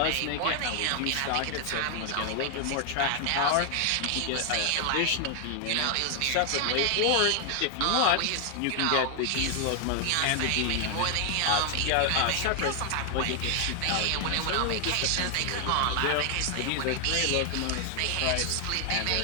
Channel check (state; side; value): different; both; correlation 0.00